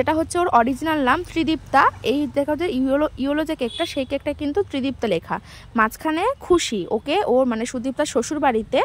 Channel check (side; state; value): both; identical; correlation 1.00